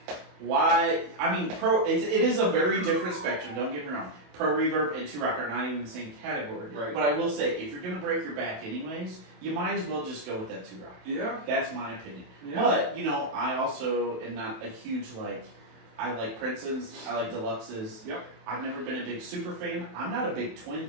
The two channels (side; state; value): left; late; 27 ms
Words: Why? I mean, it is a very different spectrum, don't get me wrong. Pro Reverb and 2-rock are not even the same category. Right. But I will say, if you're going to break your back anyways, you might as well just go with that 2-rock. Yeah. That's my opinion. Yeah. But, I also am not a huge, I like Princetons, I like Deluxes. Yep. I've never been a big super fan. I'm not a big Twin